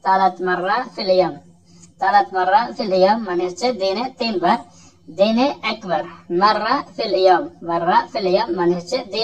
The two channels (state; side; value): identical; both; correlation 1.00